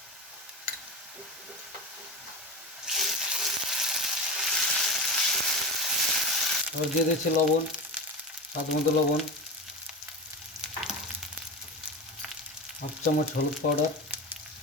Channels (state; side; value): normal; both; correlation 0.26